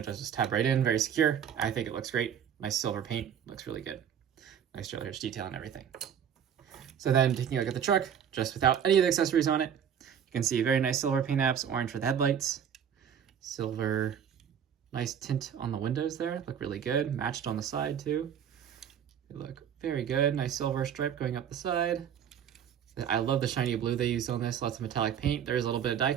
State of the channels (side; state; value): left; quieter; 8.5 dB